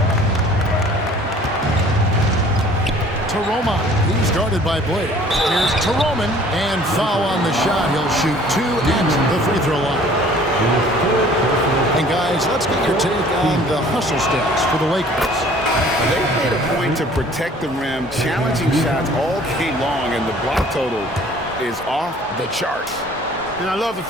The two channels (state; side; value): normal; both; correlation 0.53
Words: Taroma. He's guarded by Blake. Here's Taroman. And foul on the shot. He'll shoot 2 at the free throw line. And guys, let's get your take on the hustle stats for the Lakers. They made a point to protect the rim, challenging shots all game long, and the block total is off the charts. And I love the